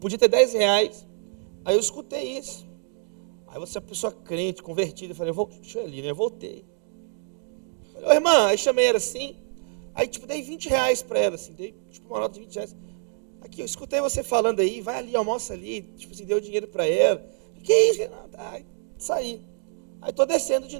ter 10 reais. Aí eu escutei isso. Aí você é uma pessoa crente, convertida, eu falei: deixa eu ir ali, né? Eu voltei. Falei: ô irmã, aí chamei ela assim, aí tipo dei 20 reais para ela, assim, dei tipo uma nota de 20 reais. Aqui, eu escutei você falando aí, vai ali, almoça ali, tipo assim, deu dinheiro para ela. Que isso? Aí saí. Aí estou descendo de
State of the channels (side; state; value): left; silent; 61 dB below the other